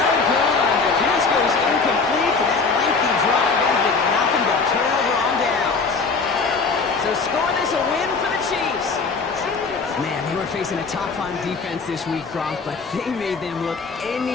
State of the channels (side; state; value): right; quieter; 4.6 dB